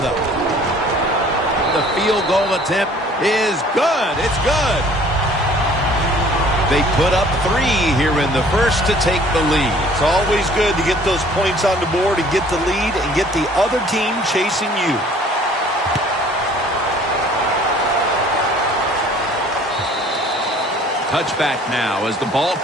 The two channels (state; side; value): normal; both; correlation 0.54